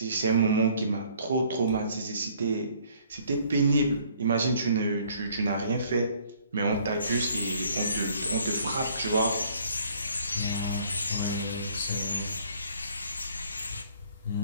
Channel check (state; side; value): inverted; both; correlation -0.60